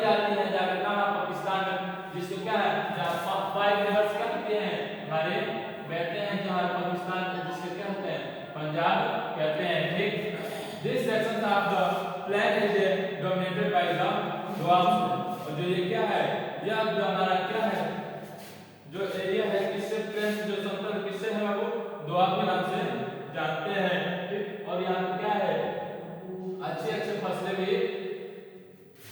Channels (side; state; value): both; identical; correlation 1.00